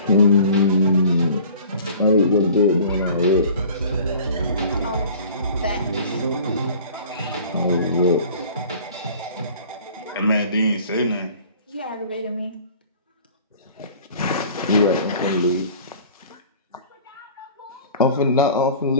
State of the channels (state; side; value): inverted; both; correlation -0.46